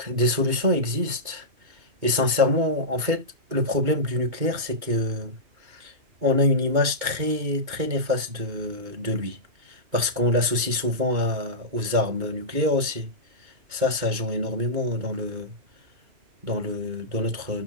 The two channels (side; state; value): left; late; 2.2 ms